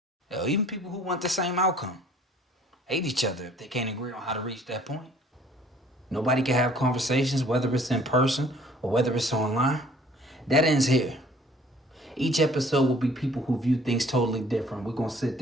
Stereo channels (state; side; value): normal; both; correlation 0.56